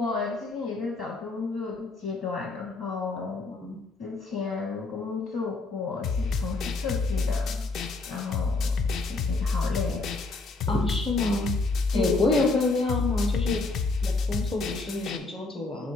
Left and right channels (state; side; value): quieter; right; 3.4 dB